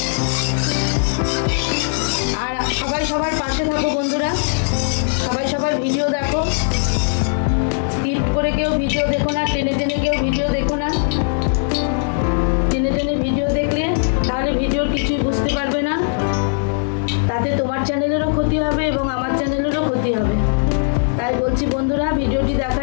আর সবাই সবার পাশে থাকো বন্ধুরা, সবাই সবার ভিডিও দেখো, স্কিপ করে কেউ ভিডিও দেখো না, টেনে টেনে কেউ ভিডিও দেখো না। টেনে টেনে ভিডিও দেখলে তাহলে ভিডিওর কিছুই বুঝতে পারবে না, তাতে তোমার চ্যানেলেরও ক্ষতি হবে এবং আমার চ্যানেলেরও ক্ষতি হবে। তাই বলছি বন্ধুরা, ভিডিওটি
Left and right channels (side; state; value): right; silent; digital silence